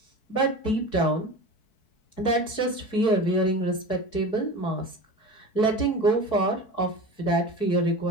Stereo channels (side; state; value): right; late; 4.6 ms